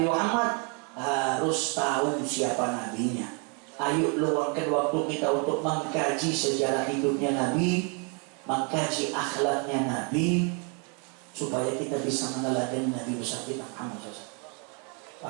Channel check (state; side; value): quieter; left; 36.6 dB